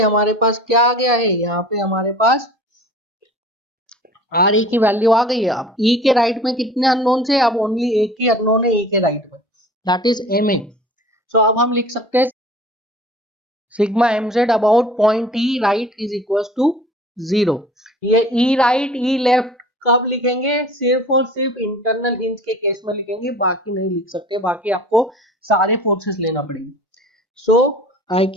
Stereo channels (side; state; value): both; normal; correlation 0.44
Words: हमारे पास क्या आ गया है, यहाँ पे हमारे पास आर ए की वैल्यू आ गई है। अब ई के राइट में कितने अननोन से, अब ओनली एक ही अननोन है ई के राइट में, that is M A. So अब हम लिख सकते हैं sigma M Z about point E right is equal to 0। ये ई राइट ई लेफ्ट कब लिखेंगे, सिर्फ और सिर्फ इंटरनल हिंज के केस में लिखेंगे, बाकी नहीं लिख सकते, बाकी आपको सारे फोर्सेस लेना पड़ेंगे। सो I